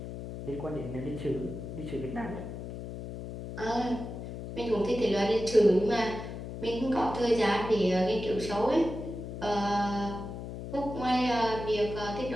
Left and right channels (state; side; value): noise; left; hum, 8 dB below the sound